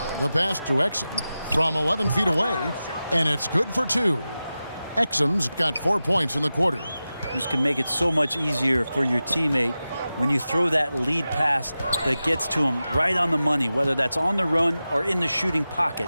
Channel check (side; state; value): both; inverted; correlation -0.94